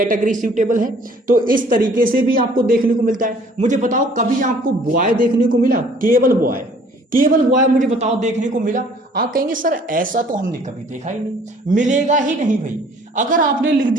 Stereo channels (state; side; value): normal; both; correlation 0.56